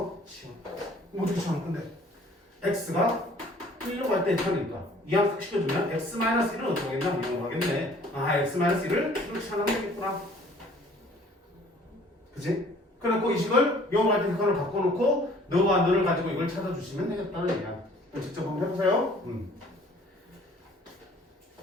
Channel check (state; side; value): normal; both; correlation 0.54